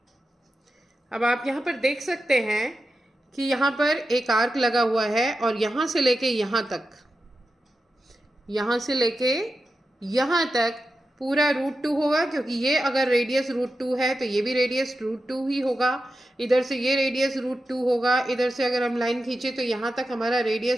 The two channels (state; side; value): normal; both; correlation 0.90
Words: अब आप यहाँ पर देख सकते हैं कि यहाँ पर एक आर्क लगा हुआ है, और यहाँ से लेके यहाँ तक, यहाँ से लेके यहाँ तक पूरा √2 होगा, क्योंकि ये अगर रेडियस √2 है तो ये भी रेडियस √2 ही होगा। इधर से ये रेडियस √2 होगा, इधर से अगर हम लाइन खींचे तो यहाँ तक हमारा